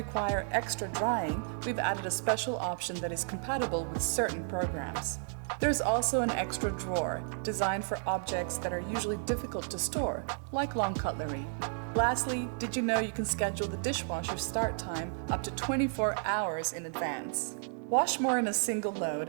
extra drying, we've added a special option that is compatible with certain programs. There's also an extra drawer, designed for objects that are usually difficult to store, like long cutlery. Lastly, did you know you can schedule the dishwasher start time up to 24 hours in advance? Wash more in a single load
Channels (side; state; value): left; silent; 56 dB below the other